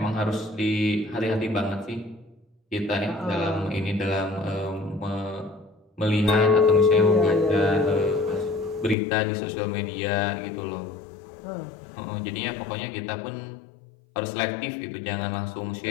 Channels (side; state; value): right; drops out; at 9.0 s